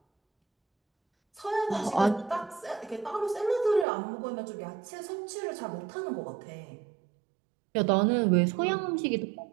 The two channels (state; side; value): drops out; left; at 3.9 s